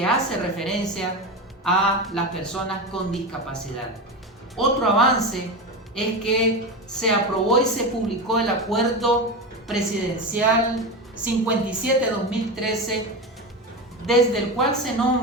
hace referencia a las personas con discapacidad. Otro avance es que se aprobó y se publicó el Acuerdo Presidencial 57-2013, desde el cual se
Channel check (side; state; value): both; normal; correlation 0.21